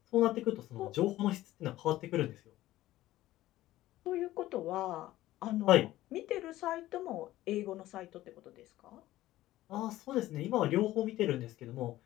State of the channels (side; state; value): right; quieter; 15.5 dB